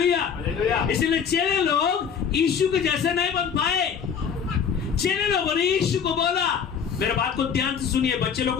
इसीलिए चेले लोग यीशु के जैसे नहीं बन पाए। चेले लोगों ने यीशु को बोला, मेरे बात को ध्यान से सुनिए, बच्चे लोग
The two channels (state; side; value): quieter; right; 7.0 dB